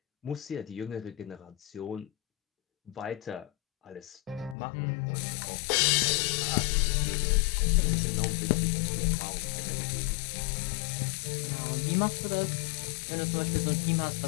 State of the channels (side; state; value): right; drops out; at 4.5 s